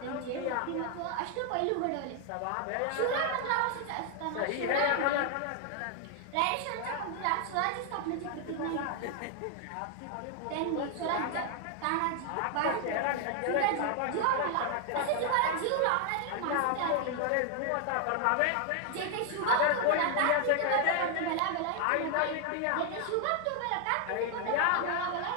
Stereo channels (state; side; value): different; both; correlation 0.00